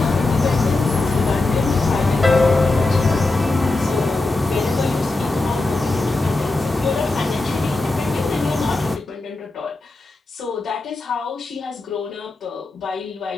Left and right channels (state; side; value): quieter; right; 3.1 dB